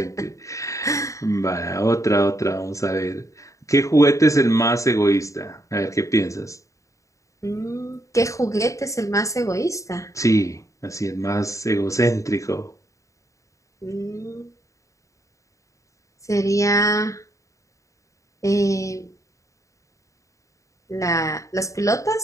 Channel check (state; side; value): late; right; 0.15 ms